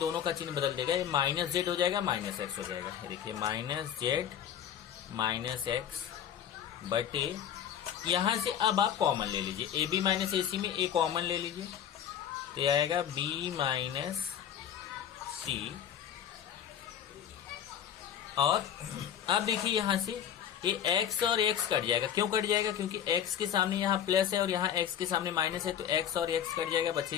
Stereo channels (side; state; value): right; quieter; 9.6 dB